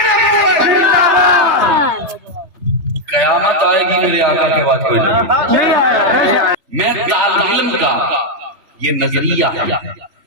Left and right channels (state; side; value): late; left; 3.4 ms